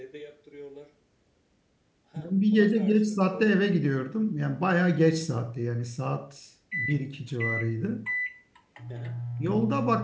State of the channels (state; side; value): identical; both; correlation 1.00